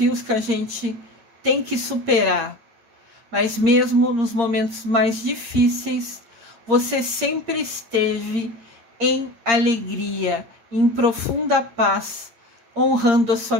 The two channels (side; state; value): left; late; 8.7 ms